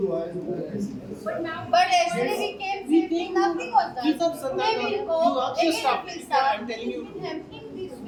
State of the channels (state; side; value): identical; both; correlation 1.00